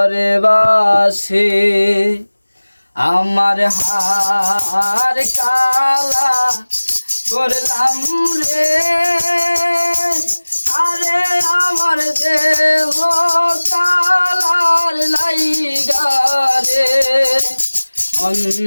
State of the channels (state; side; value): inverted; both; correlation -1.00